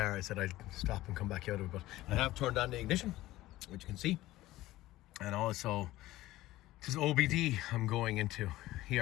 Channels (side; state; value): right; quieter; 16.6 dB